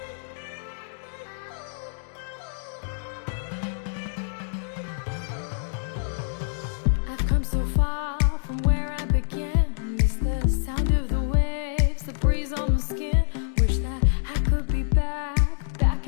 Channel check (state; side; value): silent; right; digital silence